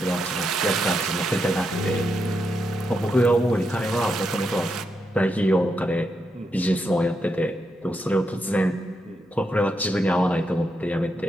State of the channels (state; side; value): normal; both; correlation 0.83